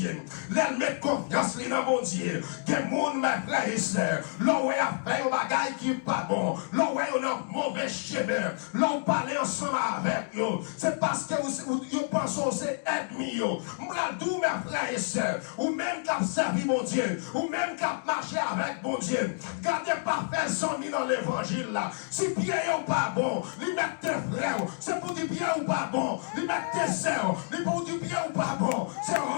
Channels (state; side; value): silent; right; digital silence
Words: Il met confiance dans mon Dieu. Que le monde, mes frères et sœurs, l'on a fait un bagaille qui n'est pas bon. L'on a un mauvais chemin. L'on parle ensemble avec eux. C'est parce que vous pensez que c'est ennemi. M'radou, mes frères et sœurs, ou même qui a servi mon Dieu, ou même qui a marché avec mon Dieu. Gardez pas faire 100 000 dans l'évangile là. Si bien ou pas bon, lui mettre tes frères, c'est pour dire bien ou pas bon. Lui mettre tes sœurs, lui pour dire bien ou pas bon. C'est